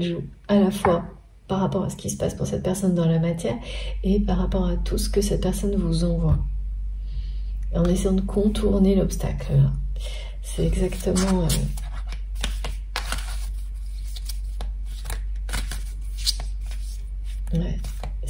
joue, à la fois par rapport à ce qui se passe pour cette personne dans la matière et par rapport à tout ce que cette personne vous envoie. En essayant de contourner l'obstacle. C'est exactement... ouais.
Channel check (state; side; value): identical; both; correlation 1.00